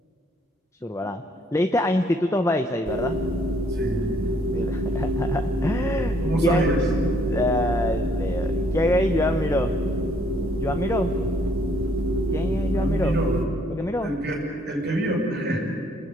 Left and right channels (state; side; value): normal; both; correlation 0.66